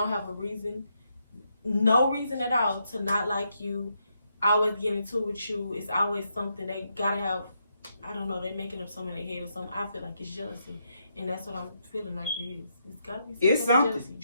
have a reason, no reason at all to not like you, always get into it with you. It's always something they gotta have. I don't know, they making up something in their head or something. I feel like it's jealousy. And that's what I'm feeling like it is. It's gotta be something. Jealousy.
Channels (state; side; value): inverted; both; correlation -0.80